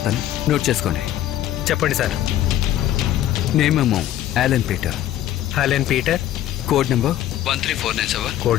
నోట్ చేసుకోండి. చెప్పండి సార్. నేమేమో Allen Peter. Helen Peter. Code number 13497.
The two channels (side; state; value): right; quieter; 12.6 dB